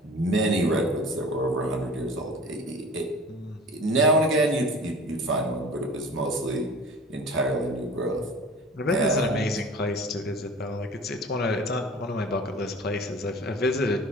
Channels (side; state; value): both; normal; correlation 0.41